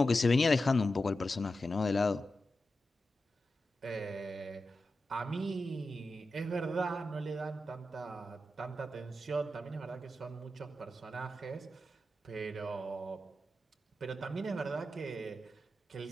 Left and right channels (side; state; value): both; normal; correlation 0.91